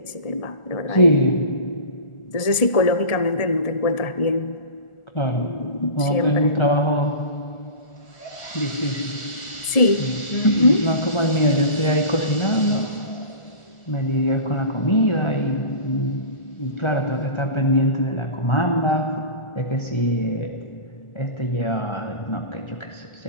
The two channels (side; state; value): right; late; 1.4 ms